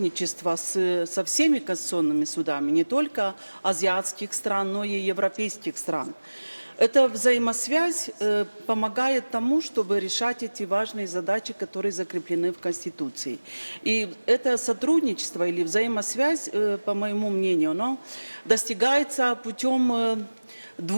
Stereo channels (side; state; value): both; inverted; correlation -1.00